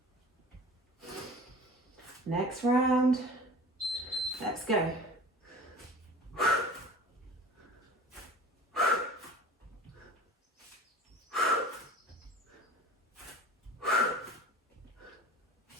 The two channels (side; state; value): both; normal; correlation 0.40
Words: Next round. Let's go.